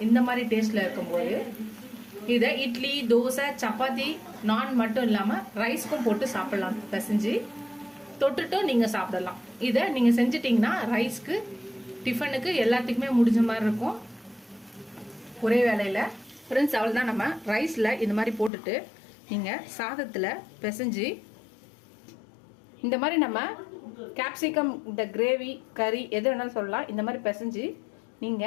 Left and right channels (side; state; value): right; drops out; at 18.5 s